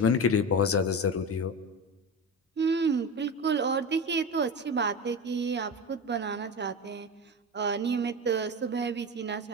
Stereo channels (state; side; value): normal; both; correlation 0.24